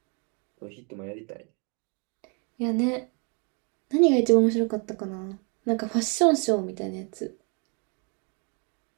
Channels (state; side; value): quieter; left; 35.9 dB